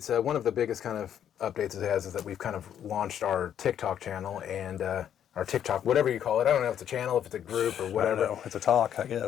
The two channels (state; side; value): quieter; right; 9.7 dB